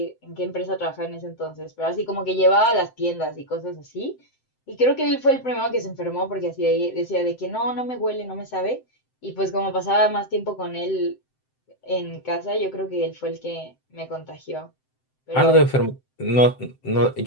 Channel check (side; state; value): right; late; 7.7 ms